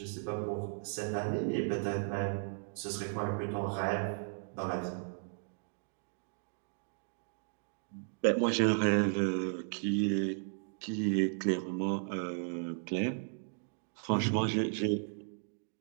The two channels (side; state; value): left; silent; digital silence